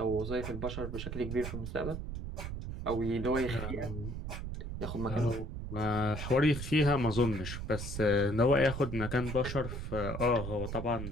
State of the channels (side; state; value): right; noise; rumble, 6 dB below the sound